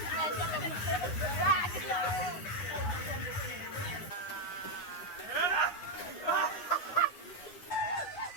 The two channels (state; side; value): late; right; 9.5 ms